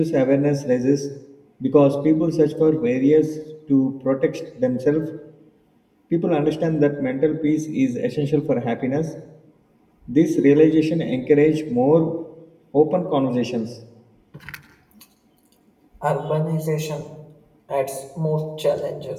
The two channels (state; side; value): identical; both; correlation 1.00